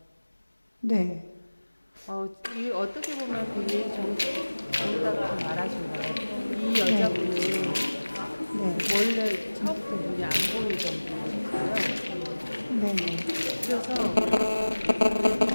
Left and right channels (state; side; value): inverted; both; correlation -1.00